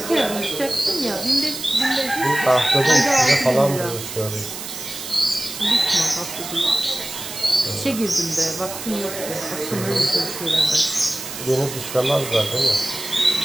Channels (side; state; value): right; noise; hiss, 9 dB below the sound